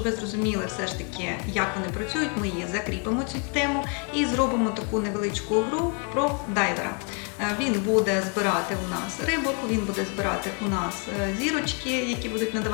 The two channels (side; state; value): right; quieter; 37.4 dB